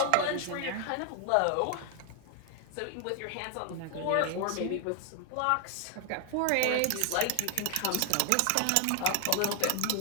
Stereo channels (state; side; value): different; both; correlation 0.00